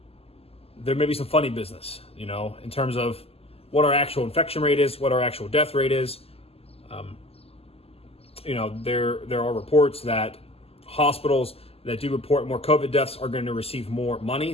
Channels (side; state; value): right; late; 0.29 ms